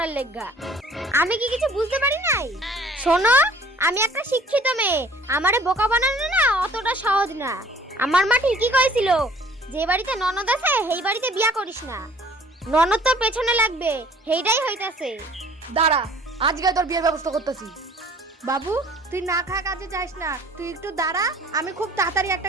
লেগা। আমি কি কিছু বুঝতে পারি নাই? শোনো আমি একটা শিক্ষিত মেয়ে, আমারে বোকা বানানো না অতটা সহজ না। আমার মা ঠিকই কইছিল যে বাড়িতে ননদ আছে সেই বাড়িতে বিয়া করিস না, ননদ তোর পেছনে লাগবে, সেইটাই হইতাছে। দাঁড়া আজকে তোর বিয়ের ব্যবস্থা করতেছি। বাবু তুই না খা কাজে যাস না, তুই একটু দাঁড়া, আমি খুব তাড়াতাড়ি একটা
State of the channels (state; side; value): normal; both; correlation 0.53